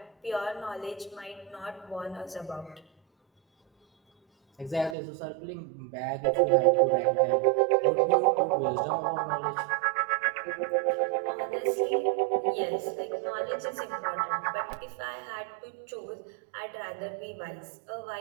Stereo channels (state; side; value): drops out; left; at 5.0 s